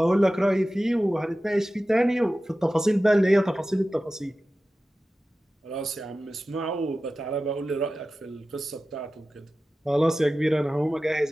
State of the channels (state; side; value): normal; both; correlation 0.95